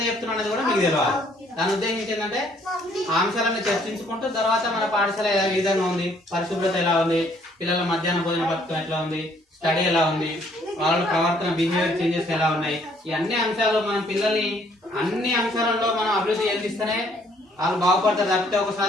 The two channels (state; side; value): normal; both; correlation 0.64